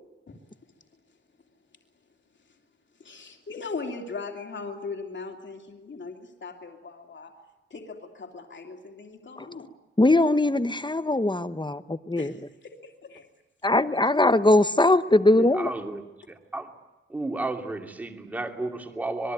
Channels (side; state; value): both; normal; correlation 0.70